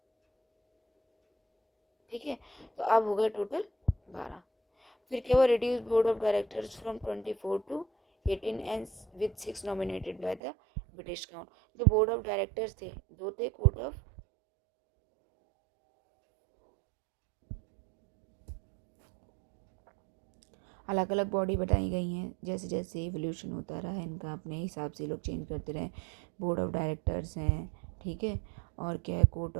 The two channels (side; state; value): left; drops out; at 10.4 s